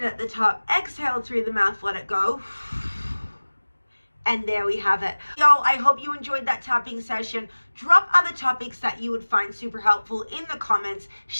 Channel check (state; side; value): inverted; both; correlation -1.00